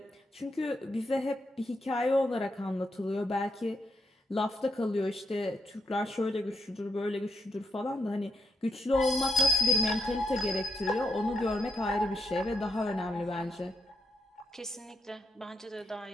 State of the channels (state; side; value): normal; both; correlation 0.79